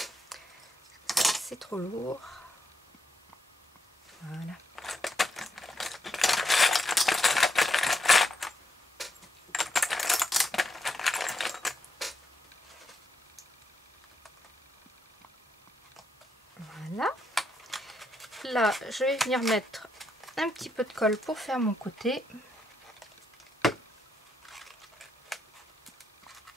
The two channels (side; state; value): both; normal; correlation 0.80